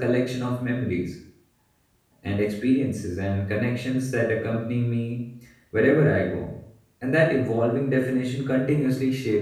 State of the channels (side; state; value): both; identical; correlation 1.00